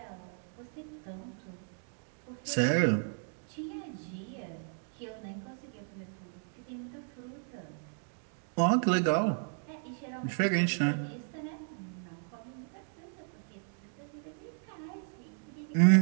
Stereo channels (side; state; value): left; silent; 55 dB below the other